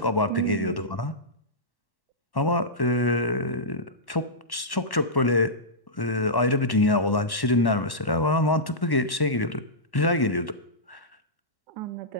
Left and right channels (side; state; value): right; late; 1.1 ms